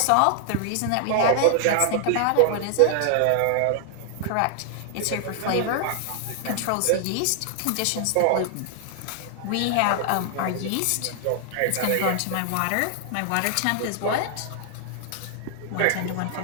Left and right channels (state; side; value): different; both; correlation 0.00